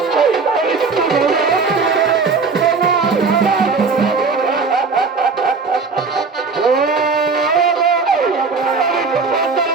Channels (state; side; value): quieter; left; 4.6 dB